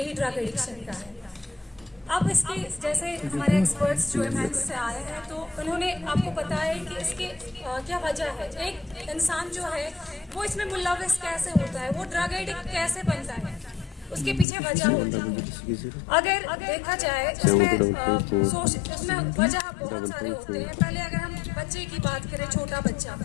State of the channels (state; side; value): drops out; right; at 14.5 s